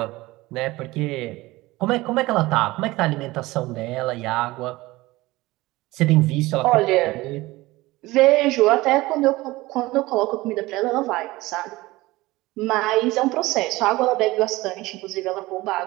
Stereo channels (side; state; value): left; quieter; 19.7 dB